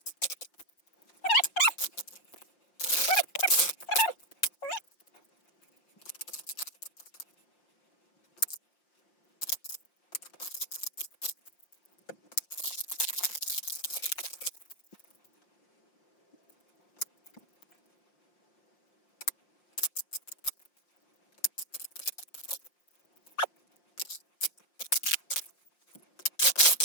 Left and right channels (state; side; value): late; right; 5.7 ms